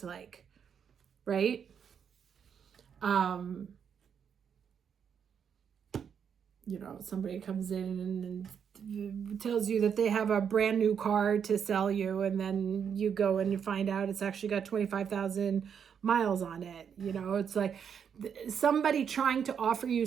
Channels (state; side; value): quieter; left; 7.5 dB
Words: like, right? Somebody comes in and tells you that they have a brand new car to sell you, and then you go and you find out it's actually got 25,000 miles on it. It's like somebody trying to offer you